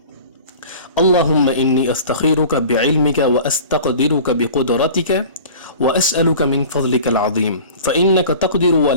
اللہم انی استخیرک بعلمک واستقدرک بقدرتک واسألک من فضلک العظیم فإنک تقدر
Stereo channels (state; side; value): inverted; both; correlation -0.41